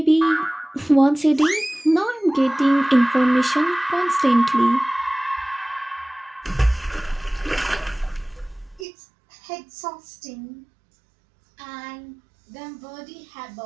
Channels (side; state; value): left; drops out; at 8.8 s